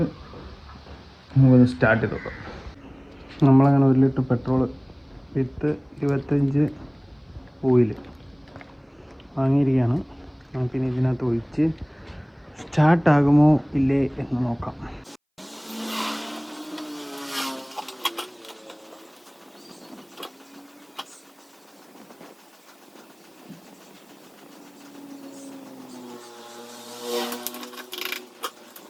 നമുക്കൊന്ന് സ്റ്റാർട്ട് ചെയ്ത് നോക്കാം. നമ്മളങ്ങനെ 1 ലിറ്റർ പെട്രോൾ വിത്ത് 25 ഓയിൽ വാങ്ങിയിരിക്കുകയാണ്. നമുക്കിനി ഇതിനകത്ത് ഒഴിച്ച് സ്റ്റാർട്ടാകുമോ ഇല്ലേ എന്ന് നോക്കാം.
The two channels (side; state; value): both; identical; correlation 1.00